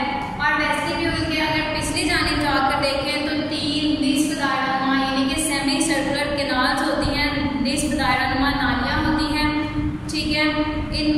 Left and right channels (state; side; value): identical; both; correlation 1.00